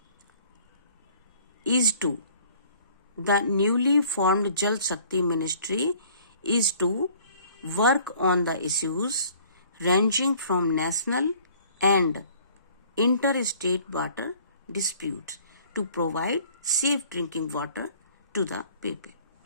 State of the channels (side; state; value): both; inverted; correlation -0.54